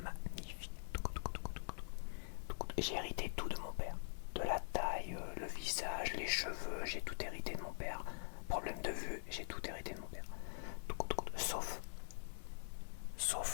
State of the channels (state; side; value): silent; right; digital silence